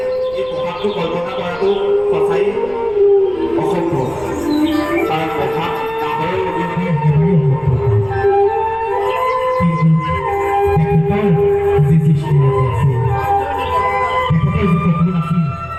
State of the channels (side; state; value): right; noise; rumble, 22 dB below the sound